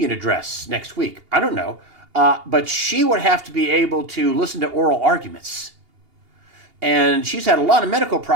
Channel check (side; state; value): left; late; 2.8 ms